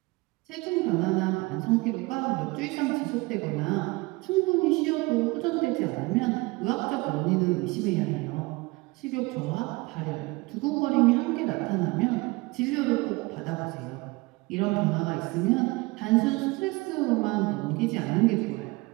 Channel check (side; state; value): left; quieter; 23.9 dB